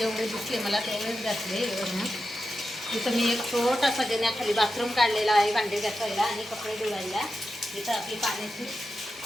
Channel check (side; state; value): both; normal; correlation 0.90